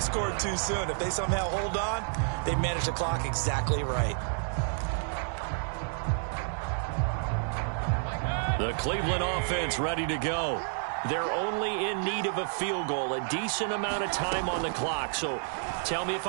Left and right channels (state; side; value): silent; left; 58 dB below the other